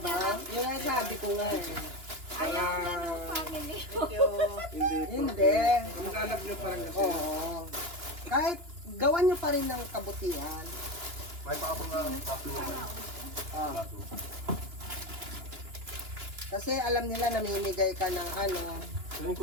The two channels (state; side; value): late; left; 2.9 ms